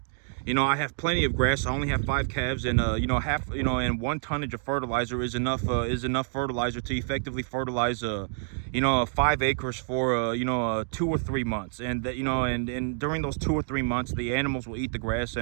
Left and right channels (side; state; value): left; silent; digital silence